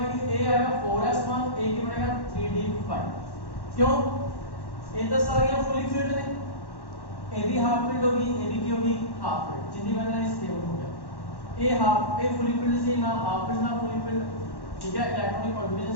ए आएगा 4s1, ए की बनेगा 3d5। क्यों? ये तो सारियां फुली फिल्ड ने, ए भी हाफ फिल्ड होगी, ए भी की होगी हाफ फिल्ड, जिंदी बनना है स्टेबल हो गया। ए हाफ, ए फुली फिल्ड से ना हाफ फिल्ड ना फुली फिल्ड, ठीक है। इलेक्ट्रॉनिक कॉन्फ़िगरेशन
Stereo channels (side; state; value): right; late; 1.1 ms